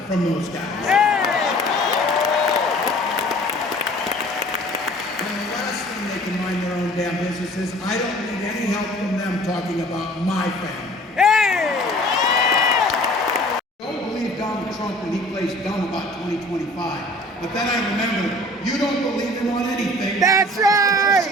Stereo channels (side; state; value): both; normal; correlation 0.48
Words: from those guys. And the last thing they can mind their own damn business is I don't need any help from them talking about my family. Don't believe Donald Trump when he plays dumb about 2025. But then I remember, you don't believe him on anything. That's